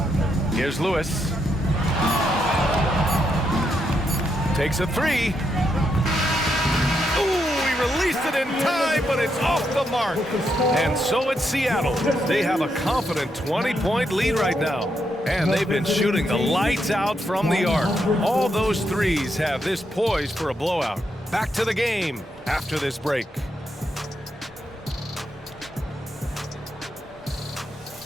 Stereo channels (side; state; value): both; normal; correlation 0.80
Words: Here's Lewis. Takes a 3. Released it in time, but it's off the mark. And so it's Seattle. They have a confident 20-point lead right now. And they've been shooting the lights out from the arc. All those threes have this poised for a blowout. Back to the game after this break.